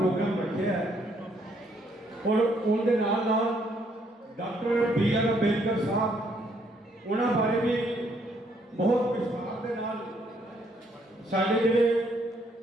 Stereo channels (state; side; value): normal; both; correlation 0.69